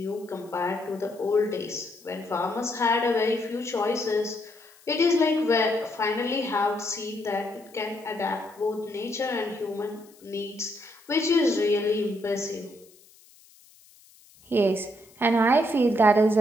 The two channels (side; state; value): left; noise; hiss, 27 dB below the sound